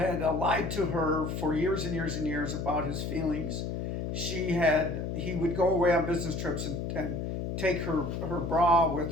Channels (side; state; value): left; noise; hum, 3 dB below the sound